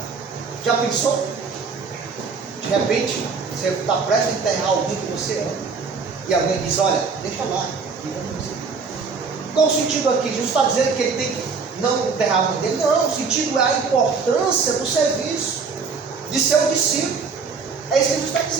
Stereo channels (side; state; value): left; quieter; 5.0 dB